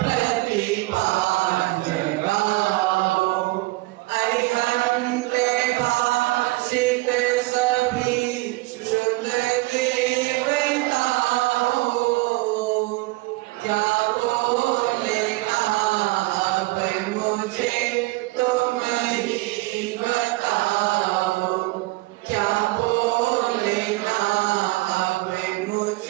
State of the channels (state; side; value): quieter; left; 21.7 dB